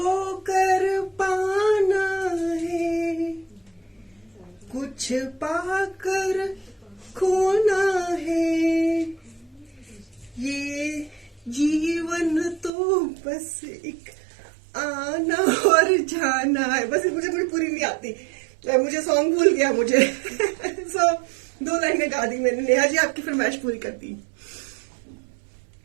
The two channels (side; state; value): left; drops out; at 12.7 s